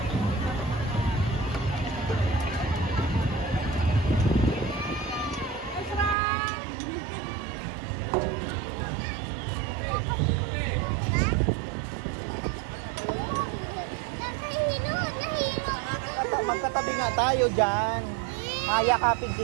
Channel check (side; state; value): left; drops out; at 6.2 s